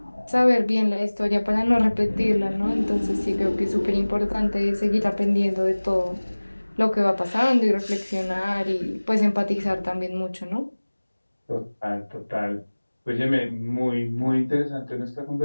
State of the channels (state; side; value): inverted; both; correlation -1.00